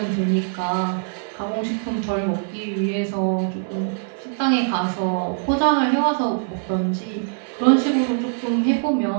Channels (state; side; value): silent; left; digital silence